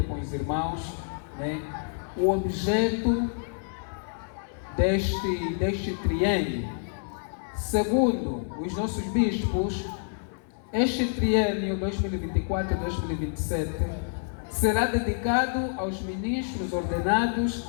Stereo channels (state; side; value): silent; right; digital silence